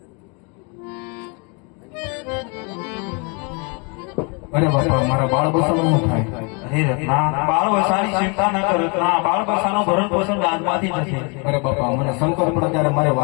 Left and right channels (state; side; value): quieter; right; 33.4 dB